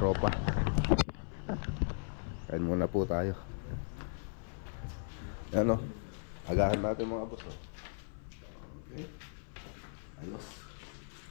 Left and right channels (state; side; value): silent; right; 53 dB below the other